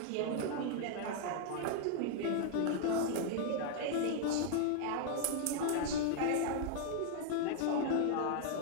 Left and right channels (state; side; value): different; both; correlation 0.00